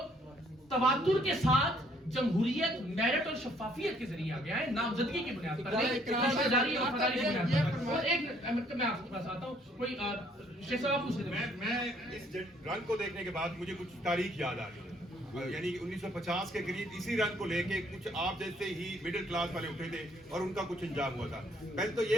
तवातुर के साथ जमहूरियत, मेरिट और शफाफियत के जरिए आ गया है, नामजदगी की बुनियाद पर नहीं, रिश्तेदारी और वफादारी की बुनियाद पर। और एक मैं आपके पास आता हूँ, कोई शेख साहब आप पूछ रहे थे। मैं इस रंग को देखने के बाद मुझे कुछ तारीख याद आ रही है। यानी 1950 के करीब इसी रंग को लेके कुछ आप जैसे ही मिडिल क्लास वाले उठे थे और उनका कुछ अंजाम हुआ था। पहले तो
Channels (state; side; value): normal; both; correlation 0.64